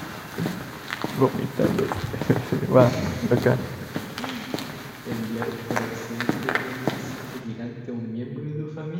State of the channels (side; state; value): both; identical; correlation 1.00